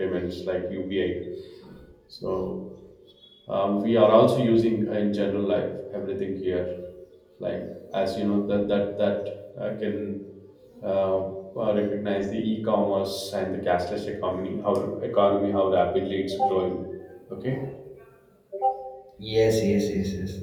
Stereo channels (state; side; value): identical; both; correlation 1.00